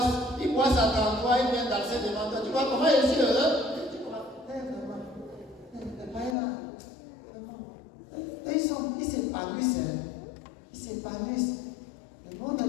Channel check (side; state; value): right; drops out; at 6.4 s